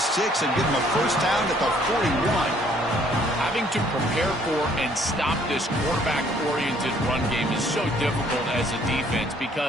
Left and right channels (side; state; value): both; normal; correlation 0.62